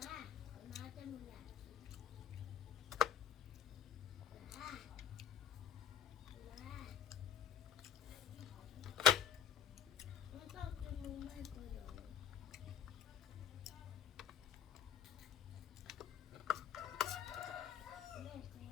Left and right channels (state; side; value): quieter; right; 9.4 dB